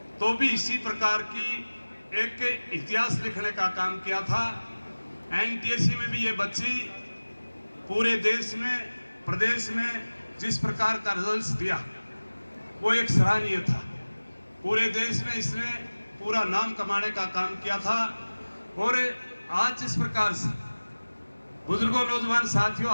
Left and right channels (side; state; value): both; inverted; correlation -1.00